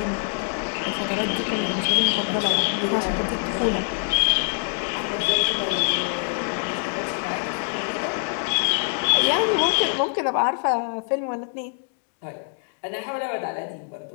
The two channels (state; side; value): silent; right; 62 dB below the other